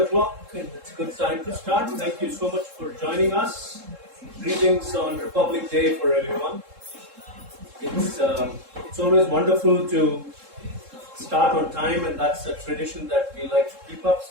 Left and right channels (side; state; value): left; late; 3.7 ms